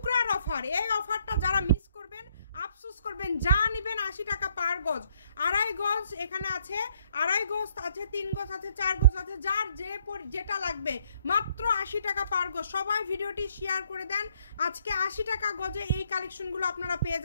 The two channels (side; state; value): both; inverted; correlation -0.68